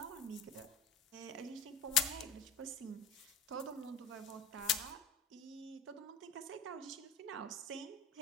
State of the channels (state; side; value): quieter; right; 4.5 dB